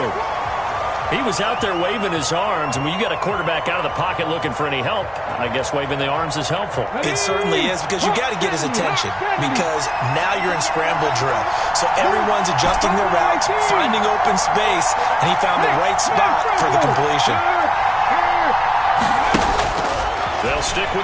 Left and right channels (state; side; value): identical; both; correlation 1.00